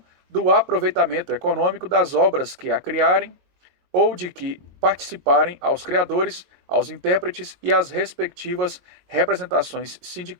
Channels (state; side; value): late; left; 22 ms